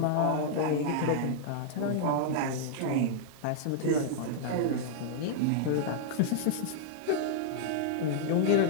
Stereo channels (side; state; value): both; different; correlation -0.01